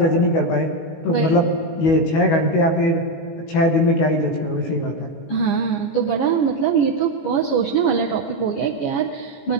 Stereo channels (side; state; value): right; late; 18 ms